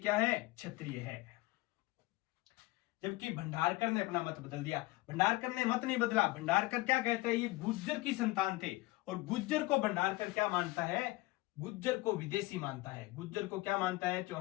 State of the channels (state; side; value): quieter; right; 20.7 dB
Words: है? क्षत्रिय है। जबकि भंडारकर ने अपना मत बदल दिया। भंडारकर ने मत नहीं बदला। भंडारकर क्या कहता है? ये गुज्जर की संतान थे। और गुज्जर को भंडारकर क्या मानता है? गुज्जर को विदेशी मानता है। गुज्जर को क्या मानता है